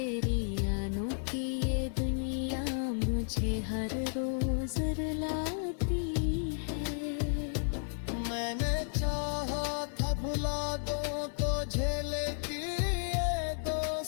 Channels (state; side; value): silent; right; digital silence